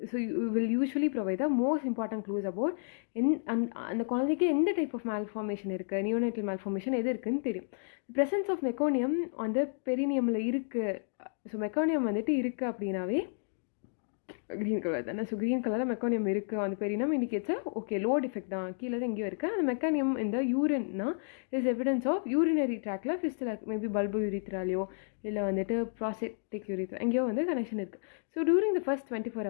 So you will usually provide the most important clues about அந்த குழந்தைக்கு எந்த டைப் ஆஃப் மால்ஃபார்மேஷன் இருக்குது, நியோனேட்டல் மால்ஃபார்மேஷன் எது இருக்குதுன்னு தெரியும். ப்ரெசன்ஸ் ஆஃப் மெக்கோனியம் வந்து பெரினியமில் இருக்குது. ஸோ மெக்கோனியம் வந்துட்டு இருக்குது அப்படின்னாவே க்ரீன் கலர் தானே. ஸோ க்ரீன் கலரில் மெக்கானியம் இருக்குது அந்த பெரினம் இண்டிகேட்ஸ் ஓகே லோ டிஃபெக்ட் தான், கீழே தான் எங்கேயோ இருக்குது. அந்த மெக்கானியம் இந்த யூரின்னா இஸ் எவிடன்ஸ் ஆஃப் யூரினரி ட்ராக்ல ஃபிஸ்டில் மேபி பல்பு யூரித்ராலையோ இல்லை வந்துட்டு ப்ராஸ்டேட்டிக் யூரித்ரா எங்கேயோ வந்து கனெக்ஷன் இருக்குது. So during the first 24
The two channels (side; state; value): right; silent; digital silence